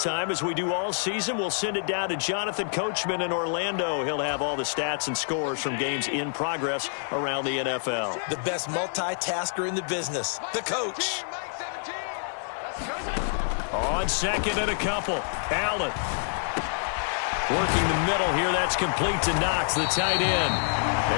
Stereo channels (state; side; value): silent; right; digital silence